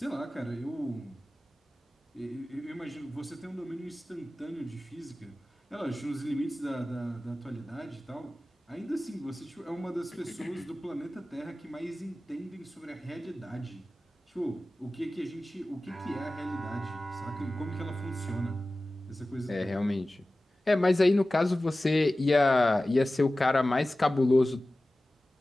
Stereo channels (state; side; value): normal; both; correlation 0.96